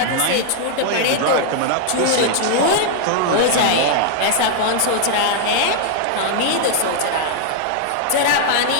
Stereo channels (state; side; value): different; both; correlation -0.01